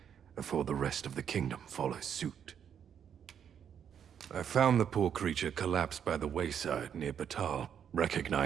before the rest of the kingdom follows suit. I found the poor creature collapsed by the wayside near Batal.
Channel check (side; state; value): left; quieter; 8.4 dB